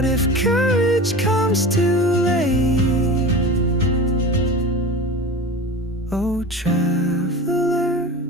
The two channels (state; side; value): normal; both; correlation 0.32